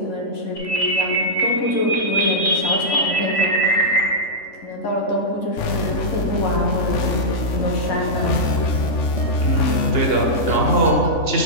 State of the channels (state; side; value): late; right; 3.5 ms